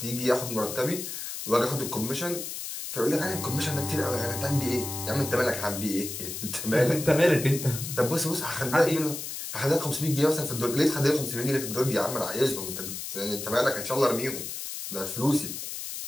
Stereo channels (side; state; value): left; noise; hiss, 7 dB below the sound